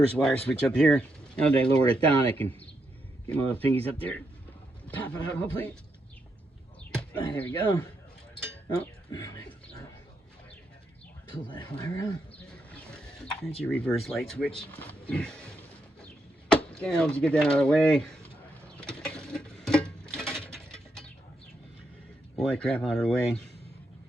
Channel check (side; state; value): both; normal; correlation 0.81